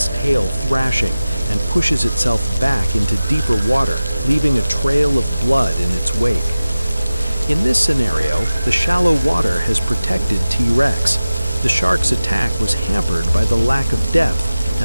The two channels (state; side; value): inverted; both; correlation -0.96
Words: tail thrashing, and pushes itself back into deeper water, leaving a trail of blood in its wake. In this scenario, the shallow water has protected T-Rex. The shark's attack was hampered by the lack of depth,